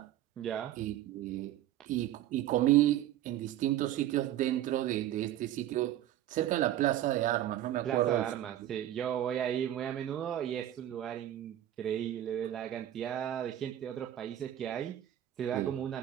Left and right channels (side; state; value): left; quieter; 12.6 dB